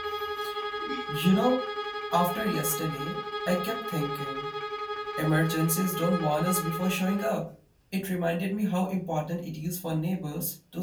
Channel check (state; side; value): identical; both; correlation 1.00